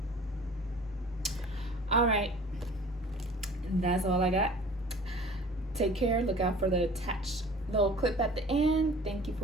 All right, that's all I got. Take care. Look out for the attached little clip at the end. Thank you for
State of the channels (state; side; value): normal; both; correlation 0.46